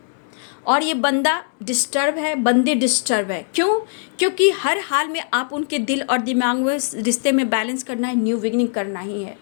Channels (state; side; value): silent; right; digital silence